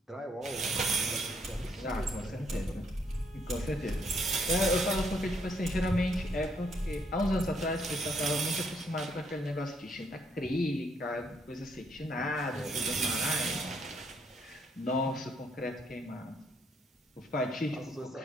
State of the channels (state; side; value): normal; both; correlation 0.71